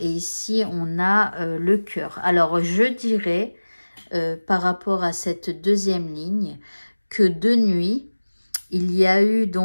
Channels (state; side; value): inverted; both; correlation -1.00